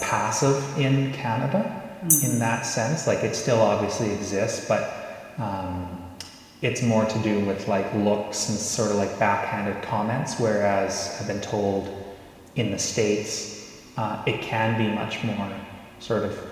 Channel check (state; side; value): identical; both; correlation 1.00